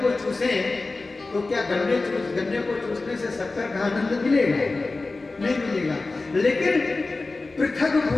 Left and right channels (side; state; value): right; quieter; 3.5 dB